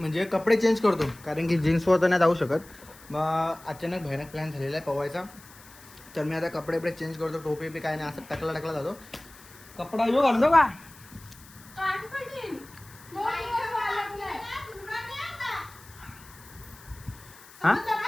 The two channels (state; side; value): noise; left; hiss, 22 dB below the sound